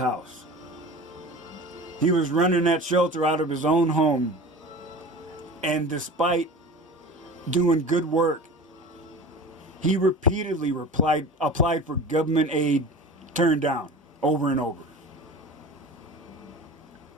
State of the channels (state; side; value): normal; both; correlation 0.36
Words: He was running that shelter out of his own home, and despite doing good work, he repeatedly applied for government aid, turned down over and over.